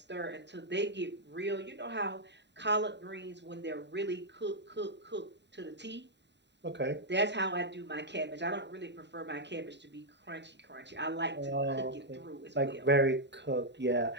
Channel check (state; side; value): late; left; 0.51 ms